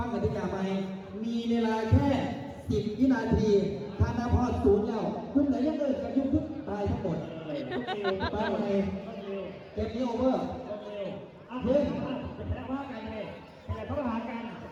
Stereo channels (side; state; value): both; identical; correlation 1.00